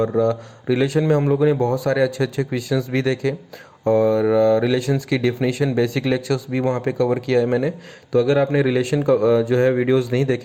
रिलेशन में हम लोगों ने बहुत सारे अच्छे अच्छे क्वेश्चंस भी देखे और रिलेशंस की डेफिनेशन बेसिक लेक्चर्स भी वहाँ पे कवर किया है मैंने। तो अगर आपने रिलेशन का जो है वीडियोस नहीं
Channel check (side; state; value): both; identical; correlation 1.00